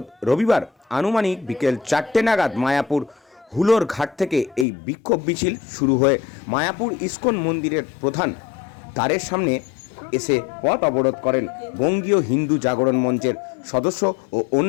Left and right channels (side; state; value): right; drops out; at 4.7 s